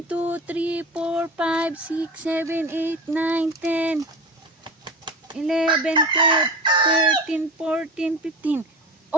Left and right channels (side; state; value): both; normal; correlation 0.30